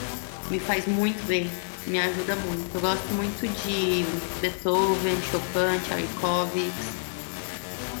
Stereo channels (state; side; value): silent; right; digital silence